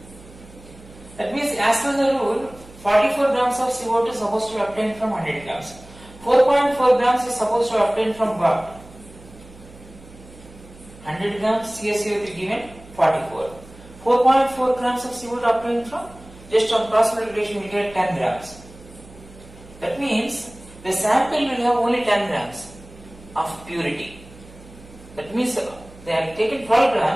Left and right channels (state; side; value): noise; right; hum, 21 dB below the sound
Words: That means as per the rule, 44 grams of CO2 is supposed to be obtained from 100 grams. 4.4 grams is supposed to be obtained from what? 100 grams CaCO3 given 44. 4.4 grams of CO2 obtained from, just on cross multiplication we get 10 grams. That means the sample will have only 10 grams of purity. That means they have taken 12